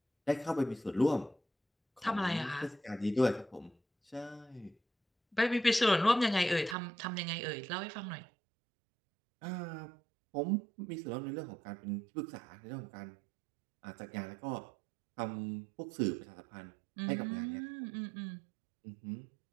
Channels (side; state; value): left; drops out; at 6.8 s